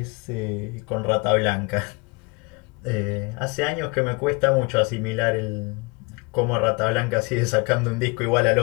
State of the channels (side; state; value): right; quieter; 28.7 dB